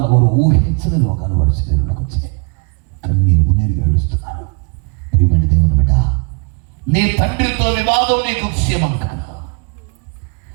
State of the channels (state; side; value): quieter; left; 35.3 dB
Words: వారు ఊహించని రోగాలు వారి శరీరంలోకి వచ్చాయి. కన్నీరు మున్నీరు ఏడుస్తున్నారు. ప్రియమైన దేవుని బిడ్డ, నీ తండ్రితో వివాదం నీకు క్షేమం కాదు,